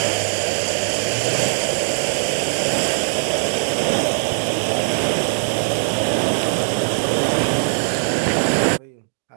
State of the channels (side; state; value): left; silent; digital silence